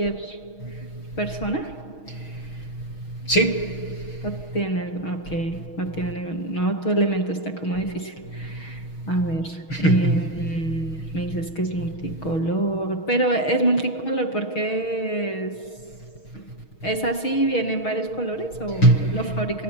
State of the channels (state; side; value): late; right; 6.3 ms